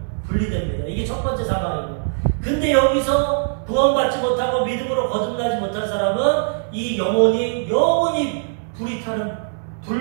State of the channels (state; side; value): silent; left; digital silence